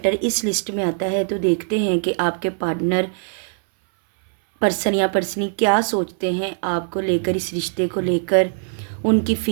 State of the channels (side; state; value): left; silent; 60 dB below the other